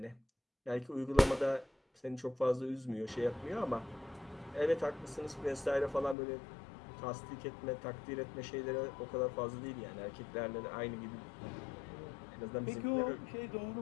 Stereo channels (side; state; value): right; drops out; at 6.2 s